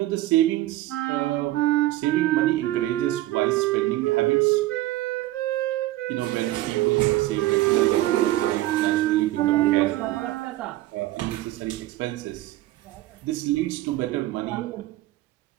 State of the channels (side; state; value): left; quieter; 16.5 dB